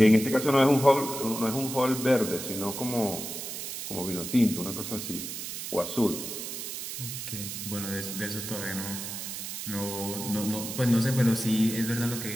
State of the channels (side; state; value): right; noise; hiss, 7 dB below the sound